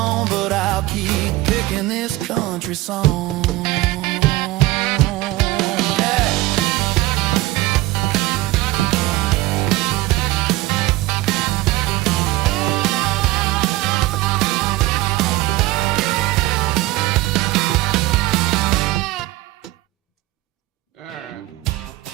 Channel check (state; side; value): quieter; left; 18.2 dB